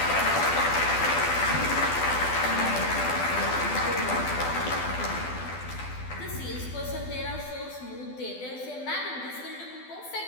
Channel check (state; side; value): late; right; 12 ms